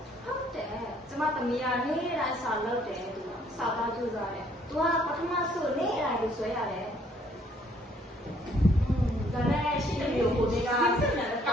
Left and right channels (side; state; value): both; normal; correlation 0.63